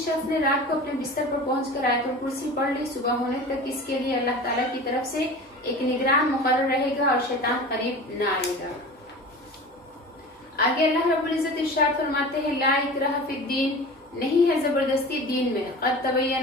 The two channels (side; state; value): both; normal; correlation 0.36